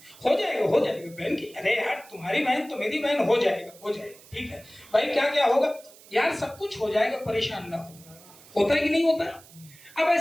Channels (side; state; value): right; noise; hiss, 22 dB below the sound